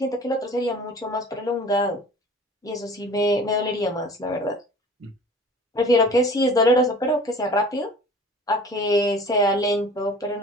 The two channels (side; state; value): both; normal; correlation 0.44